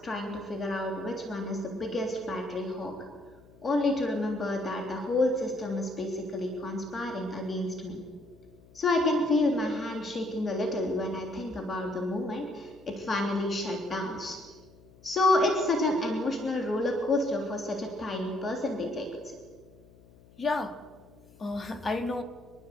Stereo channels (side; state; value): left; noise; hum, 25 dB below the sound